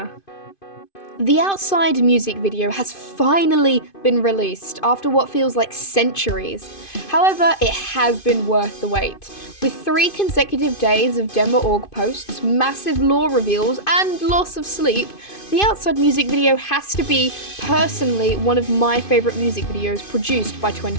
The Outside music video has finally been released after what feels like centuries. However, it has been worth the wait. With 3 consecutive days of dmaorg posts, massive lore reveals, and loss of sleep, the Outside music video has to be, personally, one of my favourite music videos produced by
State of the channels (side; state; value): right; late; 2.5 ms